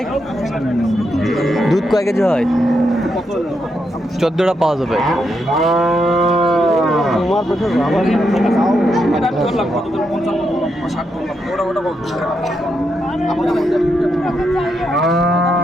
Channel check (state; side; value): normal; both; correlation 0.82